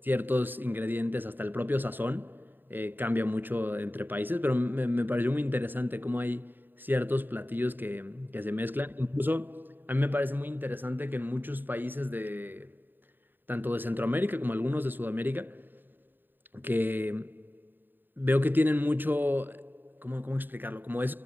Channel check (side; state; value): left; late; 0.093 ms